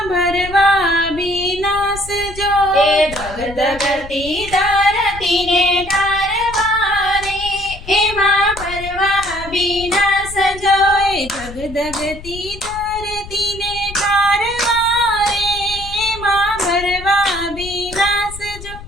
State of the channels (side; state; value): left; noise; rumble, 14 dB below the sound